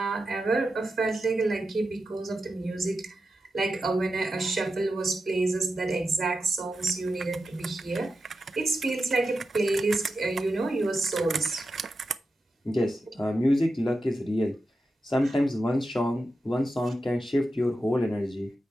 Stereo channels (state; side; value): normal; both; correlation 0.90